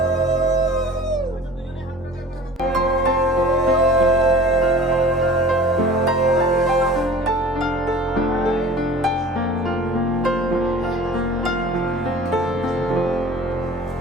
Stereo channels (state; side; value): normal; both; correlation 0.43